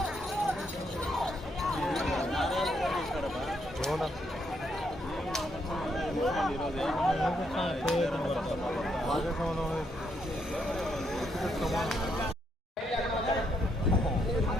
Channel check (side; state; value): both; normal; correlation 0.75